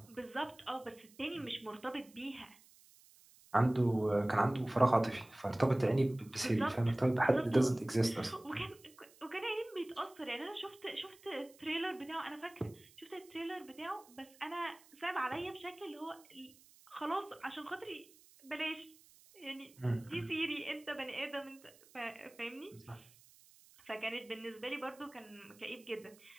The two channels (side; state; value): right; noise; hiss, 25 dB below the sound